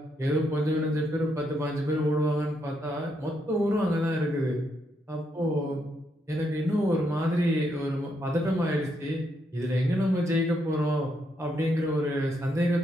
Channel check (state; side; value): normal; both; correlation 0.78